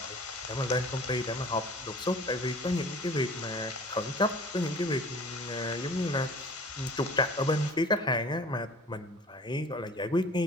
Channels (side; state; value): both; normal; correlation 0.46